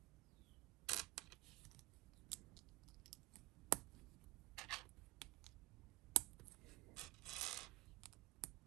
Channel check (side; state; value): left; quieter; 20.4 dB